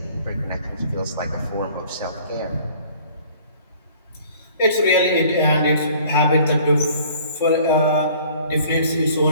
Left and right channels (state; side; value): inverted; both; correlation -0.53